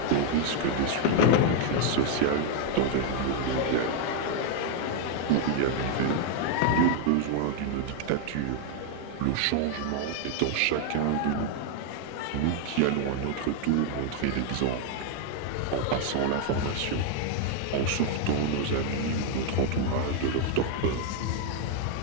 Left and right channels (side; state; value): both; different; correlation 0.00